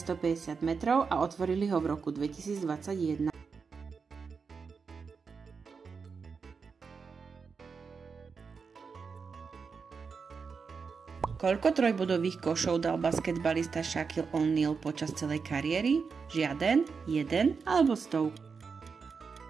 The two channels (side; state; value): left; quieter; 5.4 dB